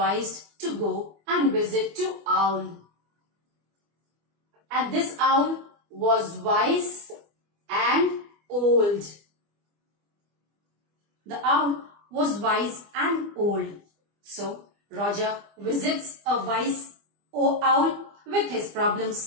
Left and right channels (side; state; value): left; late; 25 ms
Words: to go and visit to Owl. And this owl was wise and old. The owl was wise and old. So, Roger visits a wise owl with his